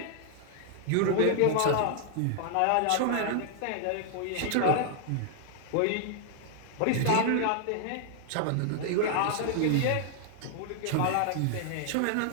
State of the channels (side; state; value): both; different; correlation 0.00